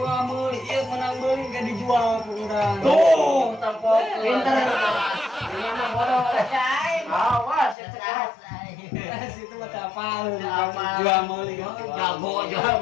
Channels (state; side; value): drops out; right; at 7.8 s